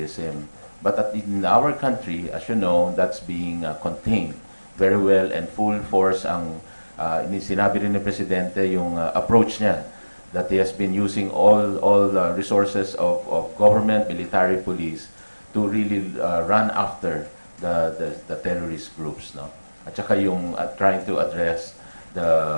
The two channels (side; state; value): both; inverted; correlation -1.00